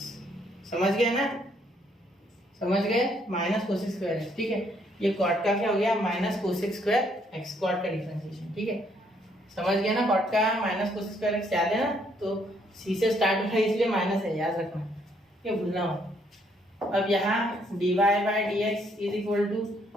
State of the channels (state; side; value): normal; both; correlation 0.69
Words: समझ गए ना, समझ गए, माइनस cosec स्क्वायर x, ठीक है। ये cot का क्या हो गया, minus cosec square x, cot का डिफरेंशिएशन, ठीक है, समझ गए ना, cot का माइनस cosec स्क्वायर x, याद है ना, तो c से स्टार्ट होता है इसलिए माइनस है, याद रखना, ये भूलना मत। अब यहाँ dy by dx is equal to